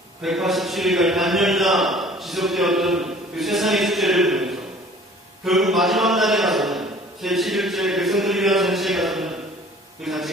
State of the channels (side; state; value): both; normal; correlation 0.50